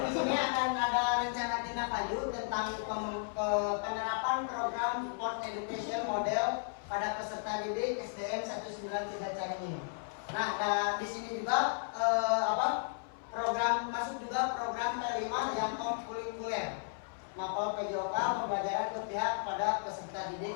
sini akan ada rencana tindak lanjut tentang penerapan program Sport Education Model pada peserta didik SDN 193 Caringin. Nah, di sini juga program masuk juga program T5 yang kurikuler. Mapol PJOK pembelajaran berpihak pada peserta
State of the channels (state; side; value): silent; right; 55 dB below the other